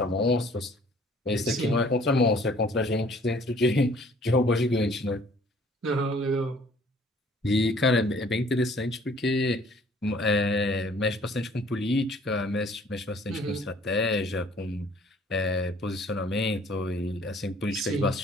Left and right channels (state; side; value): normal; both; correlation 0.56